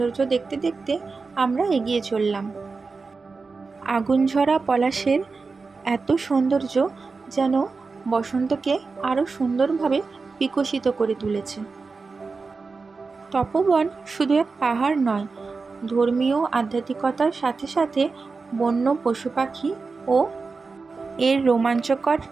দেখতে দেখতে আমরা এগিয়ে চললাম। আগুনঝরা পলাশের এত সৌন্দর্য যেন বসন্তকে আরও সুন্দরভাবে বিকশিত করে তুলেছে। তপোবন শুধু এক পাহাড় নয়, ধর্মীয় আধ্যাত্মিকতার সাথে সাথে বন্য পশু পাখি ও এর রোমাঞ্চকর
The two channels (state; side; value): quieter; left; 4.3 dB